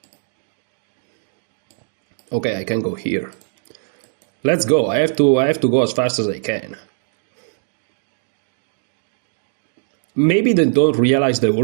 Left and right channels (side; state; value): left; silent; digital silence